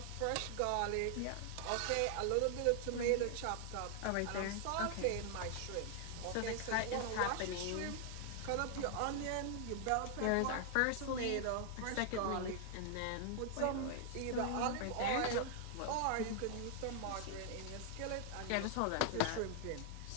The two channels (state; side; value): different; both; correlation 0.00